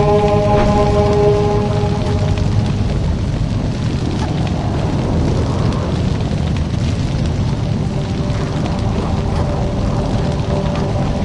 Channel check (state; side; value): identical; both; correlation 1.00